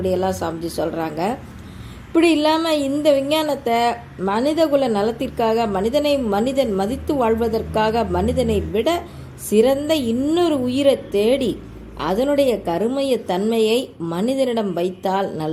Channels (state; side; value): identical; both; correlation 1.00